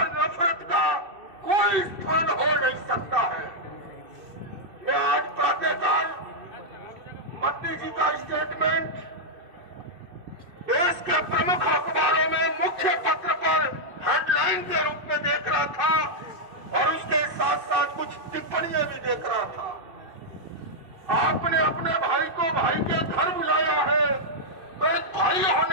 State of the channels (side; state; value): left; late; 2.6 ms